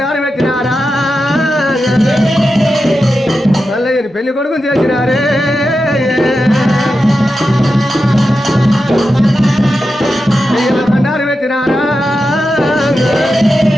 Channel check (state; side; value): normal; both; correlation 0.90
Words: పెట్టినారా. మల్లయ్యని పెళ్లి కొడుకుని చేసినారే. బండారు పెట్టినారా.